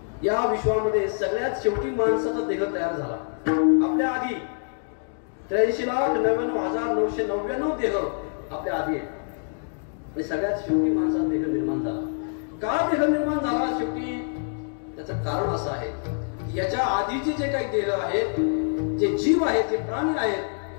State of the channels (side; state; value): right; silent; digital silence